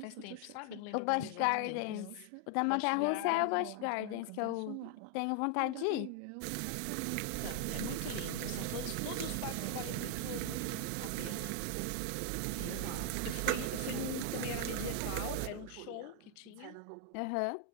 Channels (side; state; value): both; different; correlation 0.00